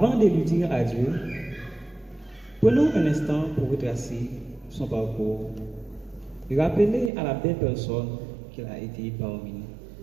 de lui dire adieu, prenons un instant pour retracer son parcours et rappeler à la belle personne qu'elle a été parmi nous.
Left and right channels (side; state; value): left; drops out; at 7.1 s